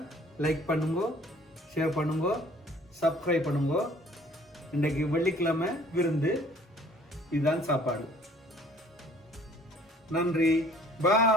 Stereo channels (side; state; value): both; normal; correlation 0.55